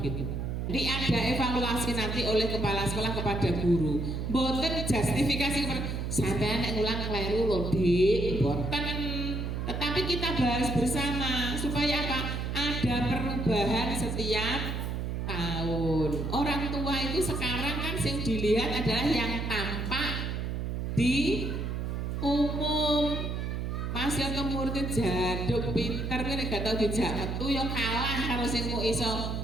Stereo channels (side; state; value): right; noise; hum, 2 dB below the sound